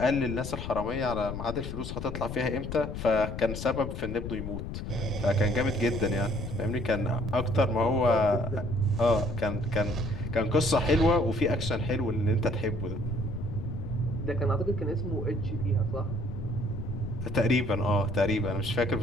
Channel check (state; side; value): noise; left; rumble, 6 dB below the sound